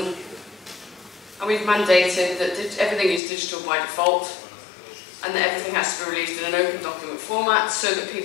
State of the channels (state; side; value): drops out; right; at 3.2 s